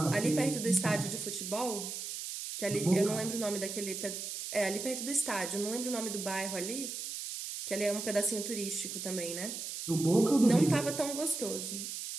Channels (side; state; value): right; noise; hiss, 6 dB below the sound